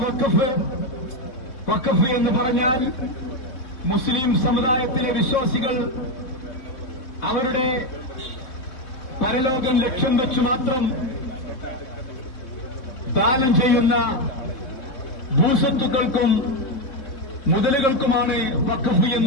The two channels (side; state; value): right; late; 3.8 ms